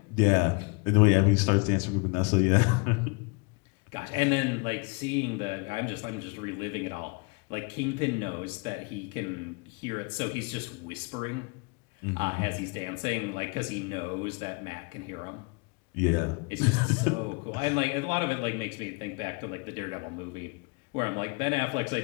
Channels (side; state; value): right; quieter; 30.5 dB